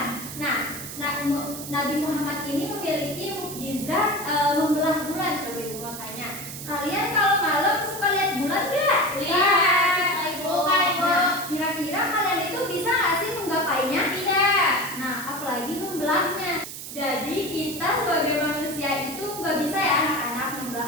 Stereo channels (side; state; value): right; noise; hiss, 10 dB below the sound